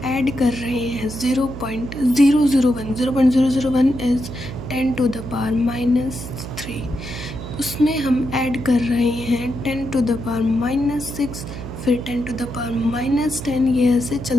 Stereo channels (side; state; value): right; noise; hum, 10 dB below the sound